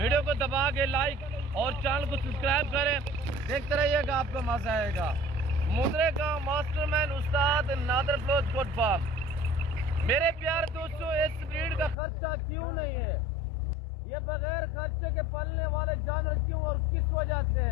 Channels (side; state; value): right; drops out; at 12.0 s